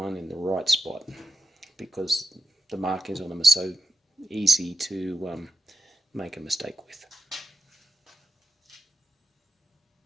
in the right spot, because the markings on them are so easy to make a mistake with.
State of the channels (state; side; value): normal; both; correlation 0.88